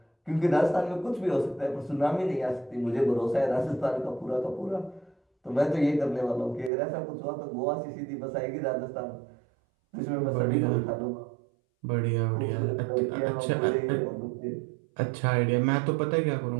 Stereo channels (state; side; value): drops out; left; at 6.7 s